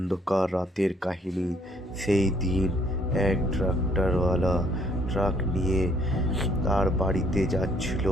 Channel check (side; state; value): both; normal; correlation 0.65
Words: রাতের কাহিনী। সেই দিন এক ট্রাক্টরওয়ালা ট্রাক নিয়ে তার বাড়িতে যাচ্ছিল।